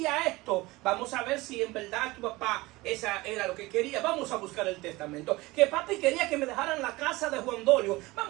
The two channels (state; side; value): quieter; left; 20.9 dB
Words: esto, vamos a ver si en verdad tu papá esa era lo que quería, vamos a buscar el testamento. Que papi quería que me dejaran la casa de Juan Dolio,